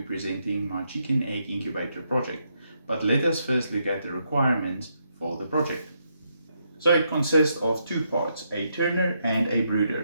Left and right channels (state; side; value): inverted; both; correlation -0.78